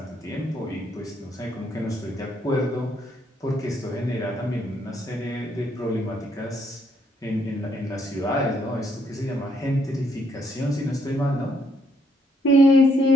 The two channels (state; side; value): normal; both; correlation 0.71